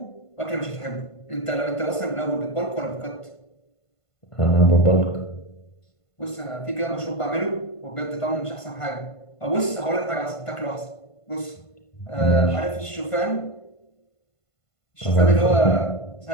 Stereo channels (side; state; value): right; late; 1.5 ms